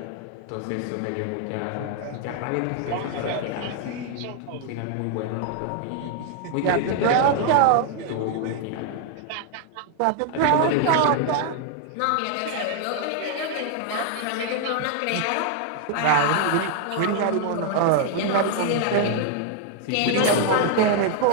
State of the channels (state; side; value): different; both; correlation 0.00